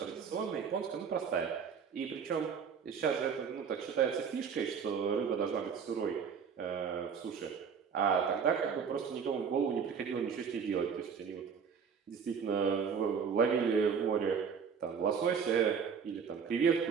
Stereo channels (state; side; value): quieter; left; 6.5 dB